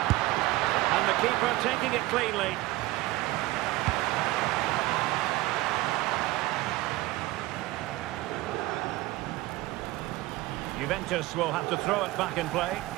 And the keeper taking it cleanly. Juventus will have to throw it back in play.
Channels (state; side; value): quieter; left; 18.8 dB